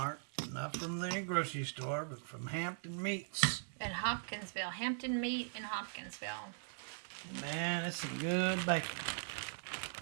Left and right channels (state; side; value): silent; left; 51 dB below the other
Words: not from the grocery store, but from Hampton Meats. In Hopkinsville. Hampton Meat in Hopkinsville. Man, it's some good bacon.